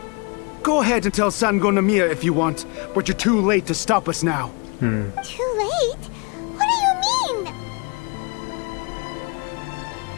Go ahead and tell Sango Namiya if you want, but you're too late to stop us now. Too late? What do you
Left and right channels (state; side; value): quieter; right; 32.2 dB